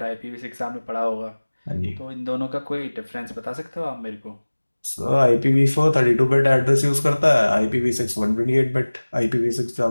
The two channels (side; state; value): both; inverted; correlation -1.00